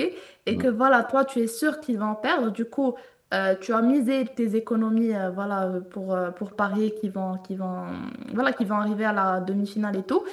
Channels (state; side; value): identical; both; correlation 1.00